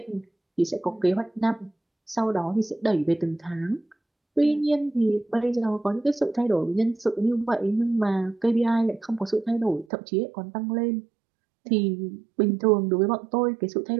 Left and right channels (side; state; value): left; drops out; at 9.9 s